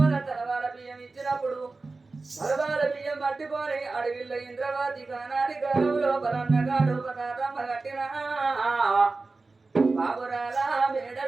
తలవాల బియ్యం ఇచ్చినప్పుడు తలవాల బియ్యం పట్టుకొని అడవిలో ఇంద్రవాది కానాడి కాలం లోపల అన్నగాడు పదార్థమ్మ కట్టిన బాబురాల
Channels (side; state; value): left; quieter; 3.7 dB